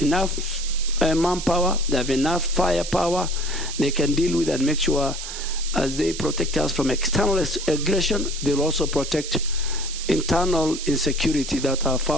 manpower, they have enough firepower, they can deal with and make sure as they protect us from external aggression, they'll also protect internal insecurity that are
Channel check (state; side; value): noise; right; hiss, 8 dB below the sound